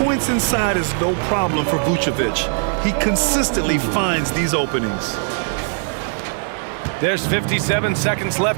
inside is no problem for Vucevic. He consistently finds these openings. There's 57 seconds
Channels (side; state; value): left; silent; 66 dB below the other